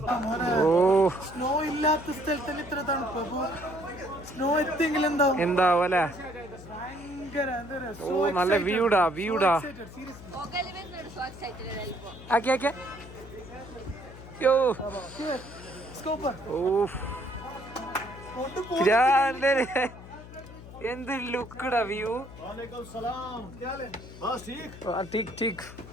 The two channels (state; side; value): noise; left; hum, 16 dB below the sound